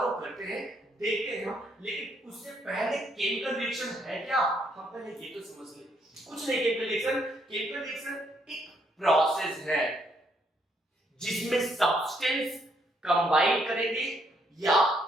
करते हैं, देखते हैं हम। लेकिन उससे पहले केमिकल रिएक्शन है क्या, हम पहले ये तो समझ लें। कुछ नहीं, केमिकल रिएक्शन एक प्रोसेस है जिसमें सब्सटेंस कंबाइन करेंगे या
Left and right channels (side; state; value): both; normal; correlation 0.72